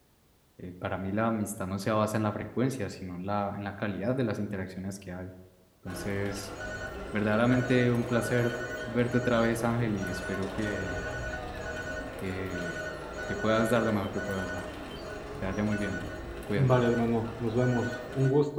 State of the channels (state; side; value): identical; both; correlation 1.00